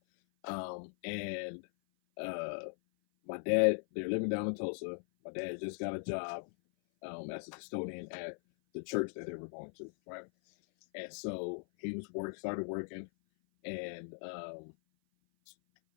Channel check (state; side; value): silent; right; 52 dB below the other